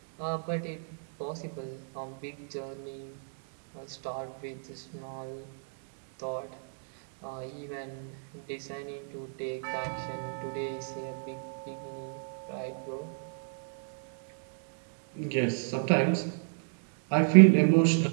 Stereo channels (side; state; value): left; silent; digital silence